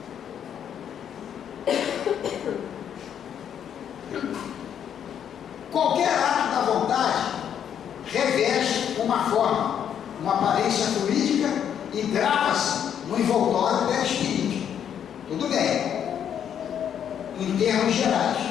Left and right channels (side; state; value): right; quieter; 9.0 dB